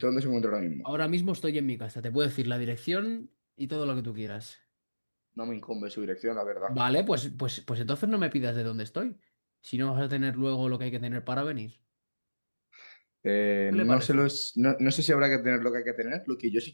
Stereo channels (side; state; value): both; inverted; correlation -1.00